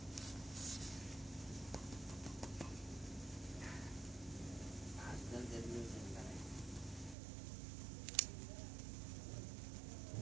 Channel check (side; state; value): left; drops out; at 7.2 s